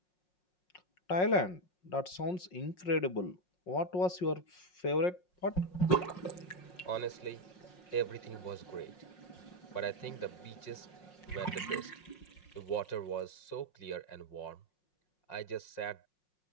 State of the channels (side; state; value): right; late; 5.5 ms